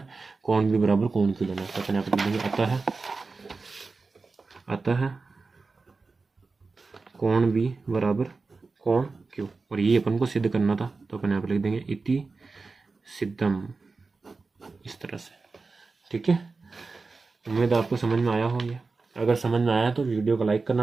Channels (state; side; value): quieter; left; 4.1 dB